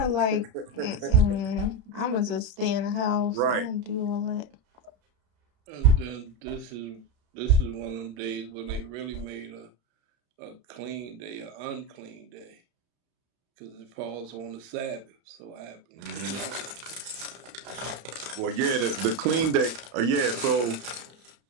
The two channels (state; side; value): late; left; 33 ms